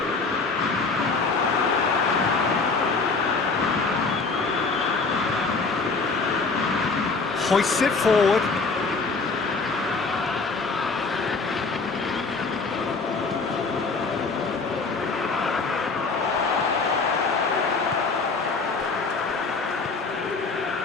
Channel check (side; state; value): right; quieter; 4.2 dB